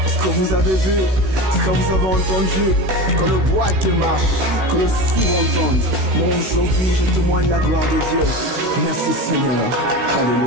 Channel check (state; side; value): late; left; 16 ms